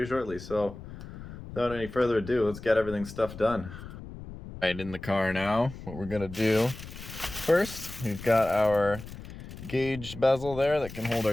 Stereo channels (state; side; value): noise; left; rumble, 13 dB below the sound